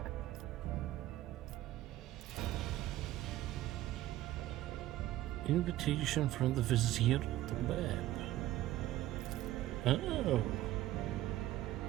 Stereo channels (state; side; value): quieter; left; 15.0 dB